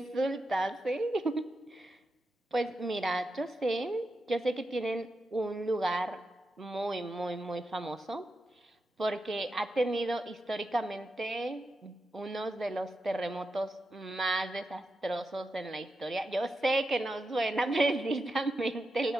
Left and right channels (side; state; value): both; normal; correlation 0.87